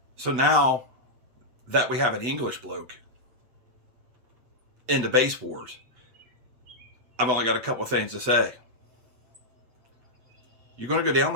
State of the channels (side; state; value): left; late; 8.1 ms